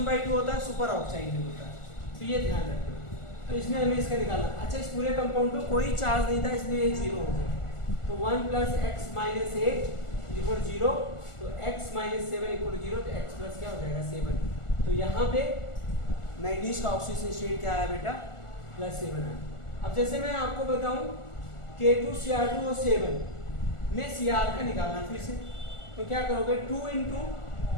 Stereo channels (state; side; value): late; right; 1.4 ms